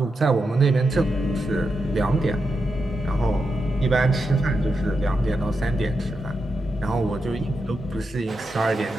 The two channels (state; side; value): normal; both; correlation 0.87